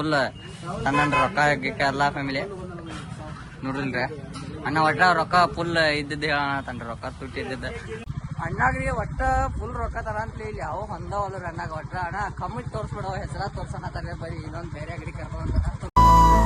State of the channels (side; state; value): both; identical; correlation 1.00